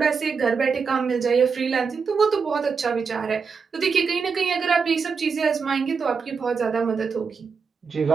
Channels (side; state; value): left; quieter; 5.5 dB